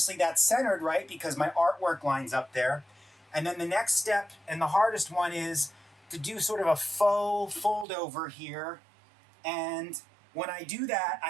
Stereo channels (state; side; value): drops out; left; at 7.9 s